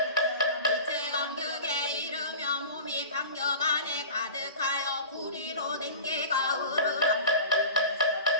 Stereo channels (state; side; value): inverted; both; correlation -0.35